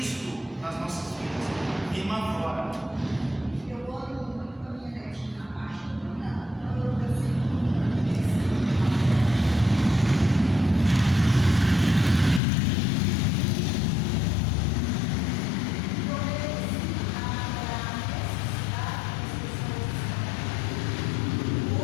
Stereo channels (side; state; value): right; drops out; at 12.4 s